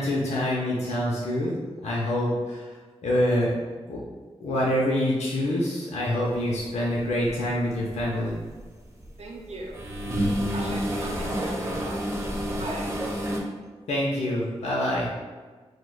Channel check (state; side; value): normal; both; correlation 0.74